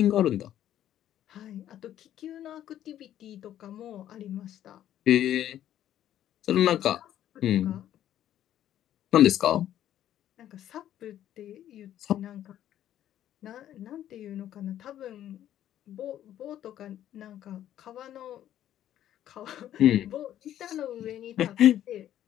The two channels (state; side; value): quieter; right; 11.7 dB